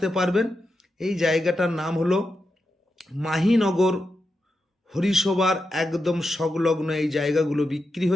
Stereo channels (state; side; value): normal; both; correlation 0.88